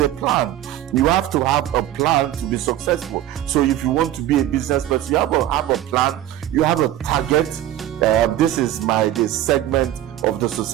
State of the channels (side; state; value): left; quieter; 12.9 dB